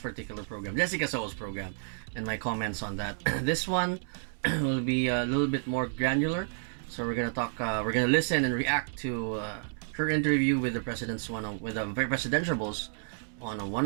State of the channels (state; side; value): silent; left; digital silence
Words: program, Jessica Soho's program, and my comments on that. This one will be a little bit more granular. So we're gonna talk, we're gonna listen and react to her interview with the with the presidentiables on a